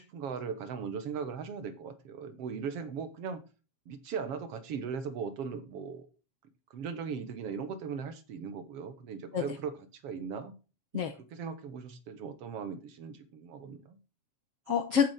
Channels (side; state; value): left; late; 7.4 ms